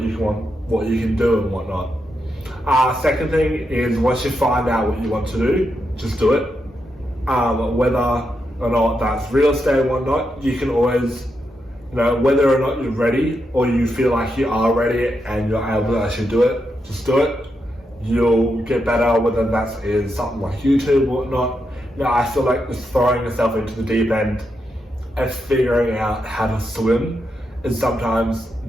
you can do and whatnot. Second thing is, once you find out what you want to do, just do it. Whether or not that's real estate and whatnot, you can always, whether or not you're ready or you feel like you are ready and you're able to actually do it, just do it. You'll get better, whether that's in something like YouTube or whatnot. I feel like just throwing yourself into the deep end and figuring out how to swim is sometimes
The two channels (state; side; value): normal; both; correlation 0.84